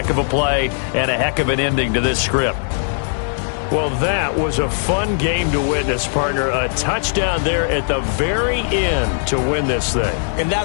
of a play and a heck of an ending to this script. Well, that was a fun game to witness, partner. A touchdown there at the very end to win this thing. And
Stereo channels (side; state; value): right; silent; digital silence